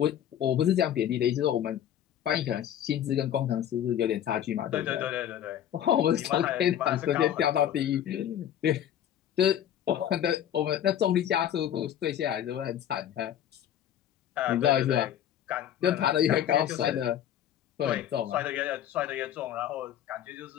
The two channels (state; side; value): quieter; right; 10.5 dB